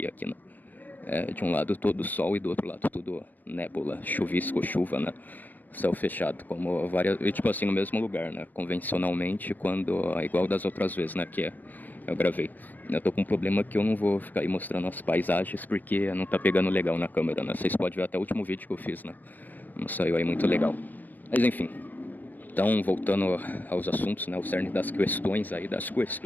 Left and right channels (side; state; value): right; late; 0.087 ms